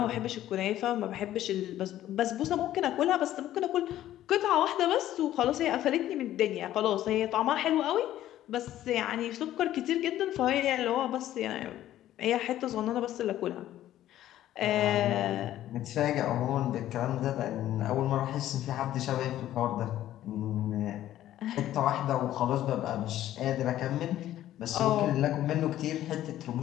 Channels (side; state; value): right; quieter; 13.0 dB